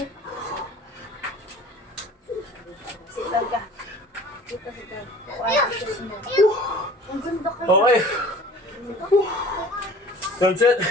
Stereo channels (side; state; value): both; normal; correlation 0.46